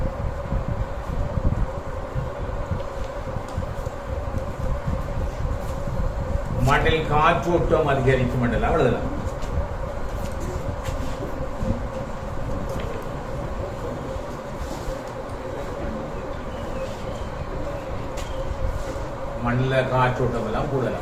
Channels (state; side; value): identical; both; correlation 1.00